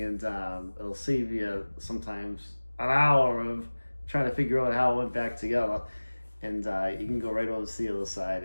it'll save you sometimes an hour of trying to figure out how it went back together. And you can go right over to the other side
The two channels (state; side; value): inverted; both; correlation -1.00